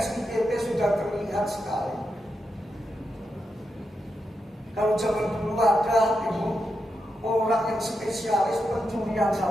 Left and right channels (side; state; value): both; normal; correlation 0.86